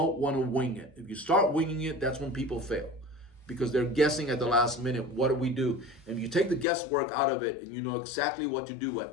want to wing it. If you start winging it, that's when people fail, because they're guessing at the last minute, what do we do? And if you take the guesswork out of it and you know exactly what to do at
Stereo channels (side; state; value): right; drops out; at 6.7 s